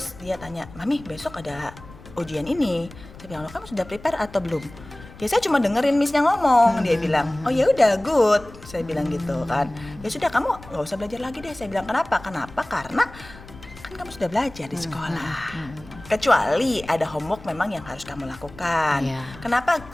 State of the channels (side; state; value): left; noise; rumble, 18 dB below the sound